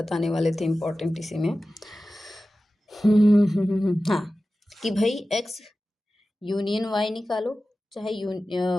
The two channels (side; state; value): both; normal; correlation 0.95